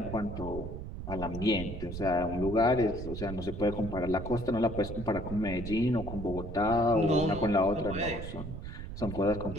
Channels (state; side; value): noise; right; rumble, 8 dB below the sound